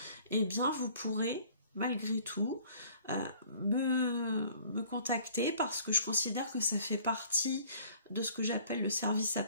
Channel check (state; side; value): inverted; both; correlation -0.53